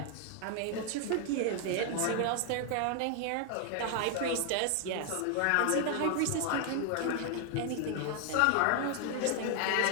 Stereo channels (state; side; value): different; both; correlation 0.00